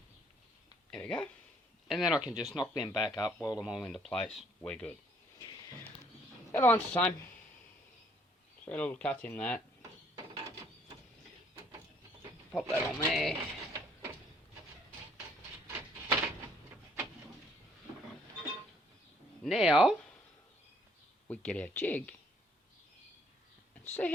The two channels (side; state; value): both; normal; correlation 0.64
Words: There we go. And then I can just knock them back up, weld them all into place. We're good. The other one's the same. 3 little cuts in that. Pop that on there. Now we get our jig and see